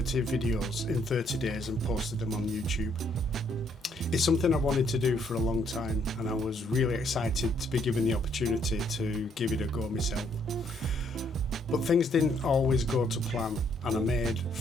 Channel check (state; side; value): normal; both; correlation 0.69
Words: videos in 30 days and posted them on YouTube. It's something I wanted to do for a long time, and I was really excited to be given the opportunity to give it a go myself. But things didn't always go to plan, and I made